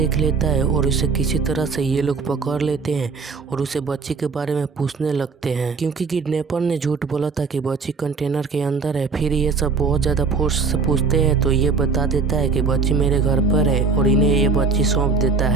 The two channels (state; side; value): quieter; left; 4.8 dB